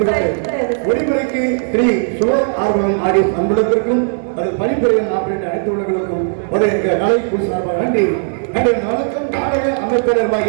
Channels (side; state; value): left; silent; digital silence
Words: ஒளிமுறைக்கு ஸ்ரீ சிவ ஆர்வம் ஆடியோ அன்புடத்திற்கும் அதில் பணிபுரியும் ஆப்பரேட் அனைத்து உள்ளவர்களுக்கும் ஒரு நாளை குழு சார்பாக நன்றி நன்றி. வணக்கம். நாடக